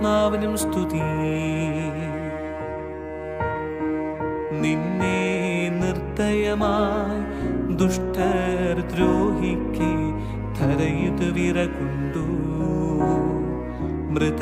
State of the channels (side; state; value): both; identical; correlation 1.00